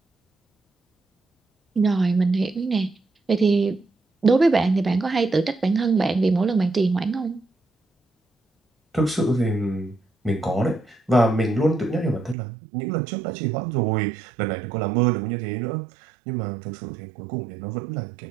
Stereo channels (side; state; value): left; drops out; at 12.4 s